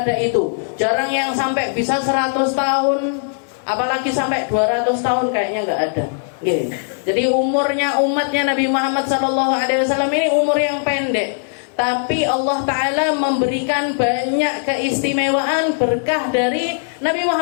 itu. Jarang yang sampai bisa 100 tahun, apalagi sampai 200 tahun kayaknya gak ada. Jadi umurnya umatnya Nabi Muhammad SAW ini umur yang pendek. Tapi Allah Ta'ala memberikan banyak keistimewaan berkah dari Nabi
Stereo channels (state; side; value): silent; right; digital silence